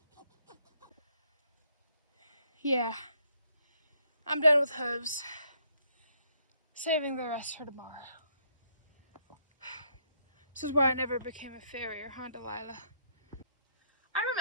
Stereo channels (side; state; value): both; inverted; correlation -0.70